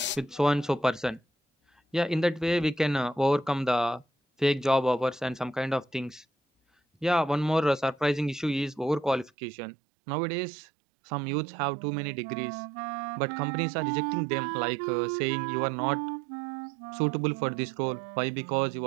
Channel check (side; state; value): left; drops out; at 9.3 s